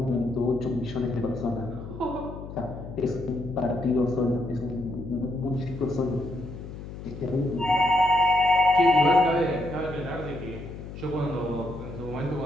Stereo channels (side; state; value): left; noise; hum, 11 dB below the sound